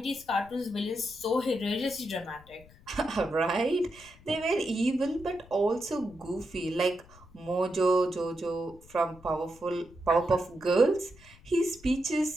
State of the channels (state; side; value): noise; left; rumble, 23 dB below the sound